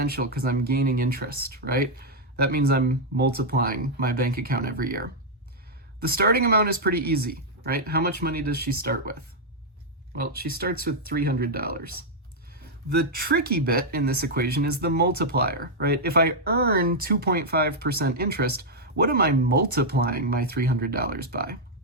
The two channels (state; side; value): normal; both; correlation -0.03